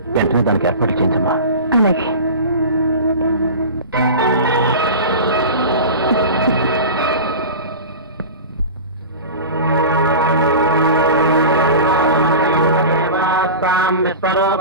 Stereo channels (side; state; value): both; inverted; correlation -0.32